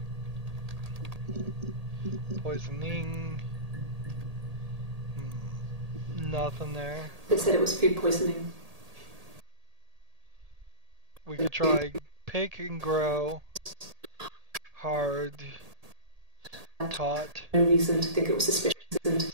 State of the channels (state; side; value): late; left; 1.8 ms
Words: Poisoning. Nothing there. They said it was food poisoning. We could try pick and grow. Hard. Taught. No reason to think it was suspicious.